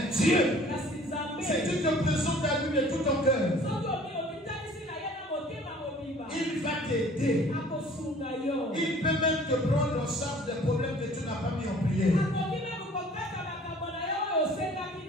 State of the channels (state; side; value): normal; both; correlation 0.51